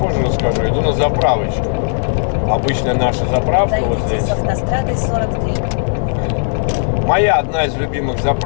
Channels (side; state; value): right; silent; digital silence